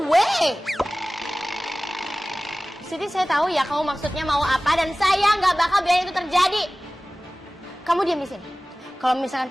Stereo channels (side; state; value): both; normal; correlation 0.98